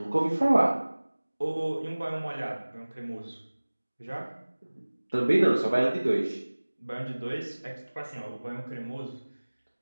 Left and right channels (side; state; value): both; inverted; correlation -1.00